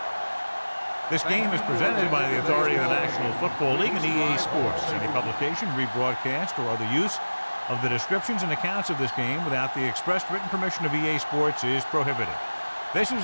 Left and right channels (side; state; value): both; inverted; correlation -1.00